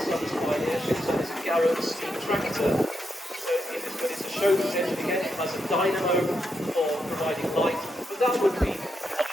Sons Pioneership, so this is Garrett's steam tractor. So but it's a chauffeur's engine again, it has a dynamo for providing light, but that would be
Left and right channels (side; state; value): both; normal; correlation 0.82